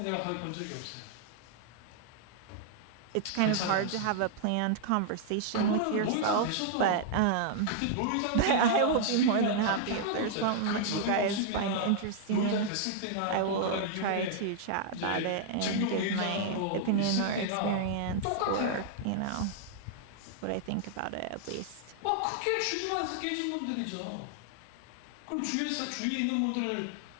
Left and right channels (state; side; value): different; both; correlation -0.01